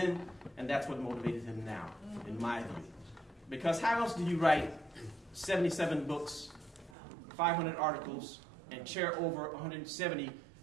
and that's what motivated him now, in my view. Because how else do you write 77 books, 500 articles, and chair over 170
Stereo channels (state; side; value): drops out; left; at 7.0 s